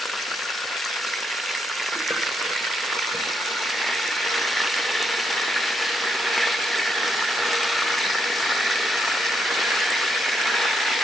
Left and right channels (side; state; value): both; normal; correlation 0.78